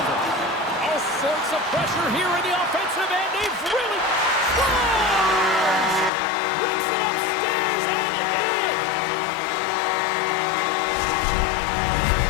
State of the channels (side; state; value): right; drops out; at 6.1 s